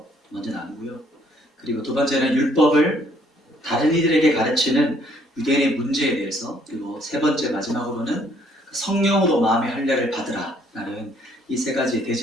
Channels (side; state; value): both; normal; correlation 0.64